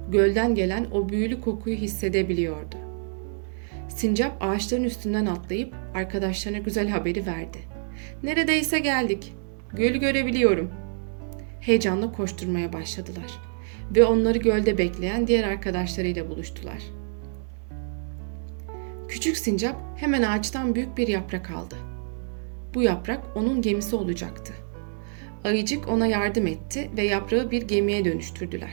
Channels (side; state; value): left; silent; digital silence